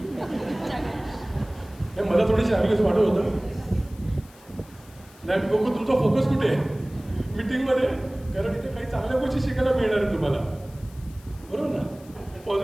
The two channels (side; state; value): left; noise; hiss, 25 dB below the sound